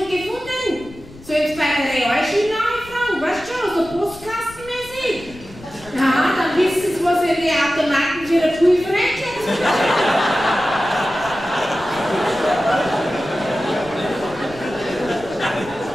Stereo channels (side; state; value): left; noise; rumble, 20 dB below the sound